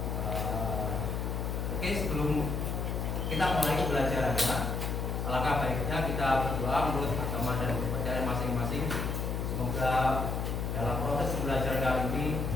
Oke, sebelum kita mulai pembelajarannya, alangkah baiknya kita berdoa menurut agama dan kepercayaan masing-masing. Semoga dalam proses pembelajaran kali ini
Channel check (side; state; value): left; noise; hum, 1 dB below the sound